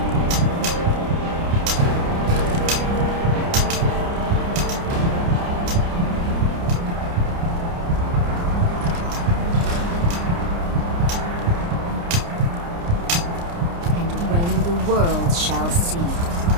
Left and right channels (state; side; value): late; left; 29 ms